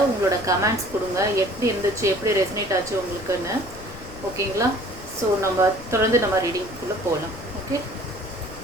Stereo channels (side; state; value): left; noise; rumble, 15 dB below the sound